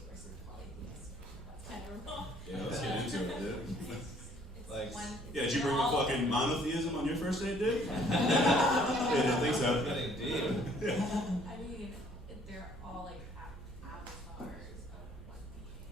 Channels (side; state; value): both; normal; correlation 0.60